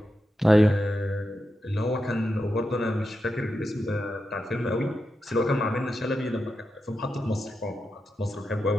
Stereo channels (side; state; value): both; normal; correlation 0.88